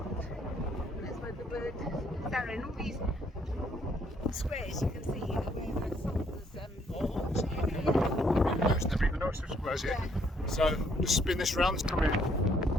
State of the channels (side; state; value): both; normal; correlation 0.68